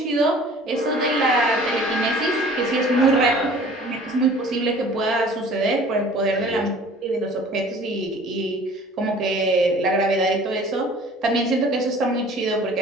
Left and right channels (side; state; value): both; normal; correlation 0.48